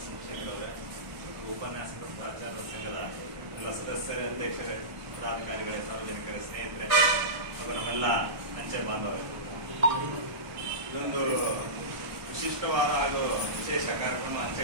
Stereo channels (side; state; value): left; late; 1.2 ms